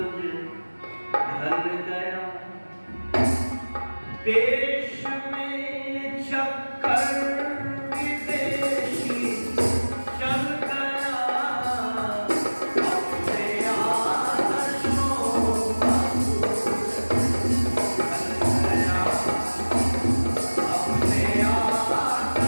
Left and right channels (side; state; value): both; inverted; correlation -1.00